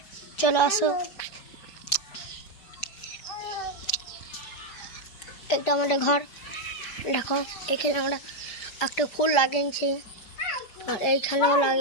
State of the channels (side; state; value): right; late; 5.0 ms